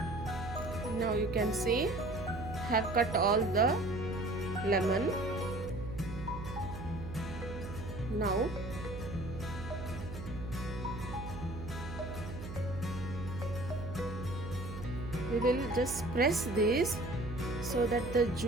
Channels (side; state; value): right; noise; hum, 9 dB below the sound